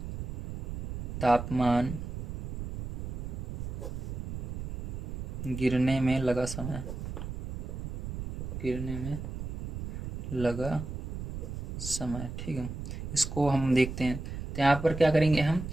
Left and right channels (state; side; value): noise; right; rumble, 6 dB below the sound